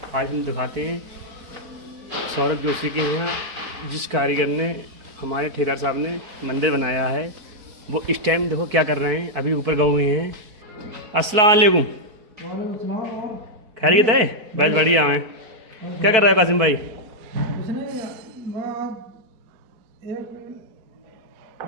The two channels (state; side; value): late; left; 4.6 ms